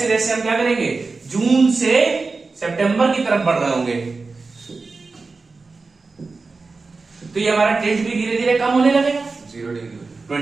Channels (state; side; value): quieter; left; 4.0 dB